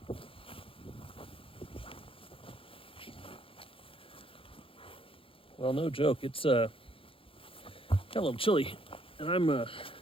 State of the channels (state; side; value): late; right; 0.26 ms